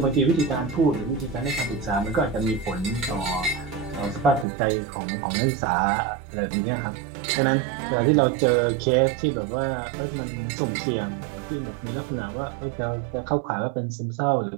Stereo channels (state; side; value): drops out; left; at 4.5 s